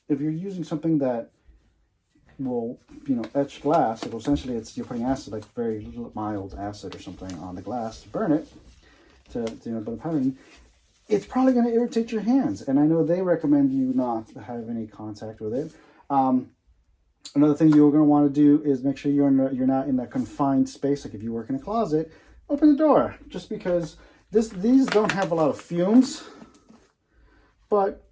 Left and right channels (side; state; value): both; identical; correlation 1.00